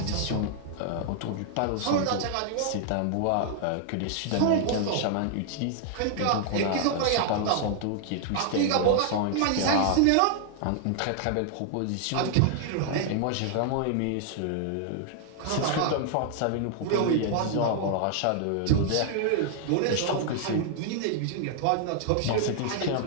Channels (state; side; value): different; both; correlation -0.01